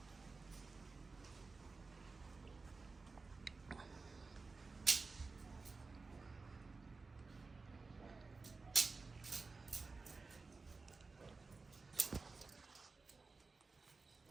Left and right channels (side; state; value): left; quieter; 4.0 dB